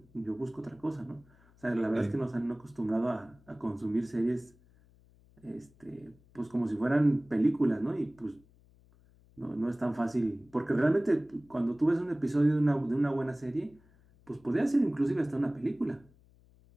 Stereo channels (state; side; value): noise; left; hum, 29 dB below the sound